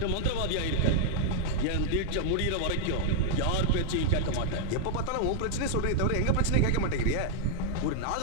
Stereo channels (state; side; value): different; both; correlation 0.00